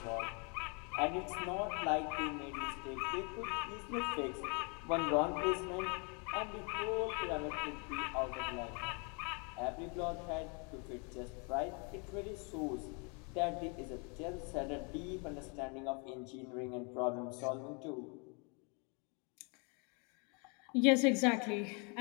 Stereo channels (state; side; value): quieter; right; 34.4 dB